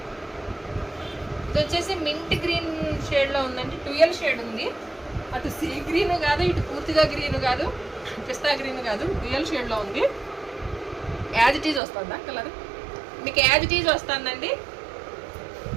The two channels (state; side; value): drops out; left; at 11.8 s